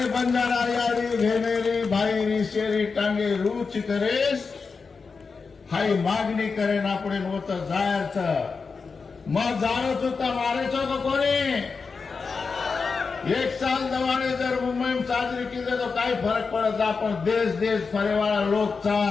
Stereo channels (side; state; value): right; quieter; 4.9 dB